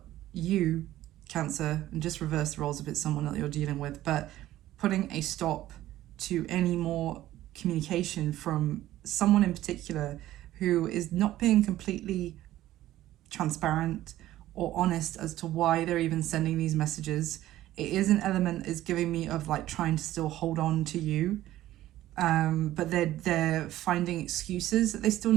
you, Cancer, and just reverse the roles if it's someone that you're dealing with, but putting a stop to any more communication from someone in particular who is not being completely transparent or honest as to why they're even sending these messages. It is an element is giving me of like trying to still hold on to you, but they're finding excuses that they still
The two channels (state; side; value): quieter; left; 14.5 dB